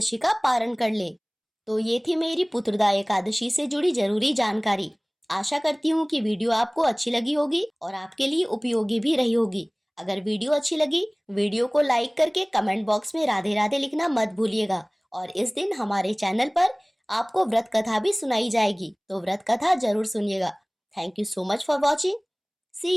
का पारण कर ले। तो ये थी मेरी पुत्रदा एकादशी से जुड़ी जरूरी जानकारी। आशा करती हूँ कि वीडियो आपको अच्छी लगी होगी और आपके लिए उपयोगी भी रही होगी। अगर वीडियो अच्छी लगी, वीडियो को लाइक करके कमेंट बॉक्स में राधे राधे लिखना मत भूलिएगा। और इस दिन हमारे चैनल पर आपको व्रत कथा भी सुनाई जाएगी, तो व्रत कथा जरूर सुनिएगा। Thank you so much for watching.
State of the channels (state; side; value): identical; both; correlation 1.00